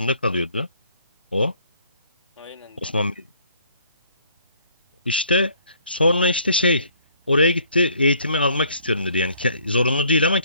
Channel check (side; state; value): both; inverted; correlation -0.61